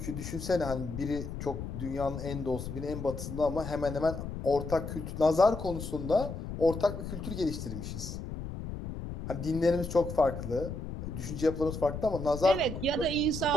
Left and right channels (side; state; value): left; noise; rumble, 7 dB below the sound